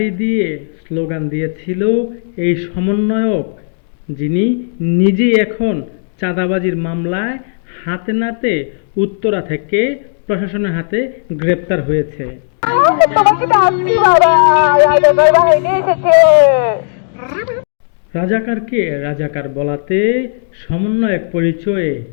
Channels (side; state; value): right; silent; 69 dB below the other